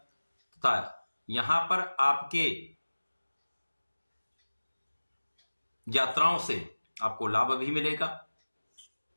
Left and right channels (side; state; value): both; inverted; correlation -1.00